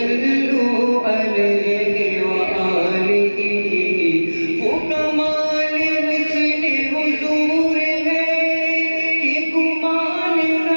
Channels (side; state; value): both; inverted; correlation -1.00